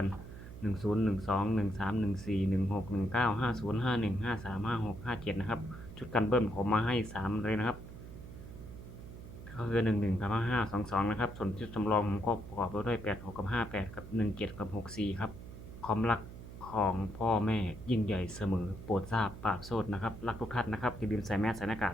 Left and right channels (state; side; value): noise; right; hum, 13 dB below the sound